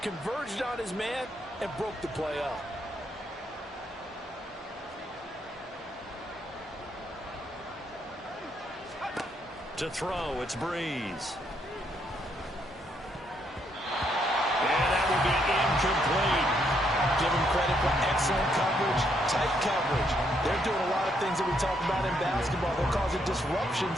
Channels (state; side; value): normal; both; correlation 0.74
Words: converged on his man, and broke the play up. To throw, it's Breeze. And that will be incomplete. Give him credit for excellent coverage, tight coverage. They're doing a lot of things that we talk about in basketball. They're causing disruptions